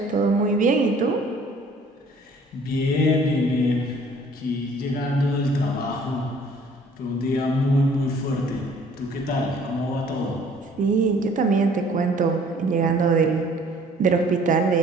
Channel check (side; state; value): both; normal; correlation 0.55